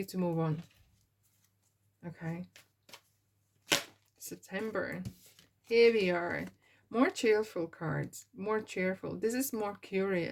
to move on. Okay. September. Here we are. More cheerful cards. More cheerful. This is more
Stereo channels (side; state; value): both; identical; correlation 1.00